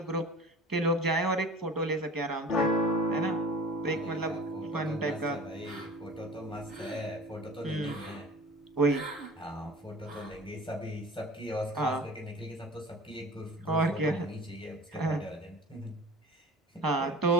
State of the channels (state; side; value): normal; both; correlation 0.41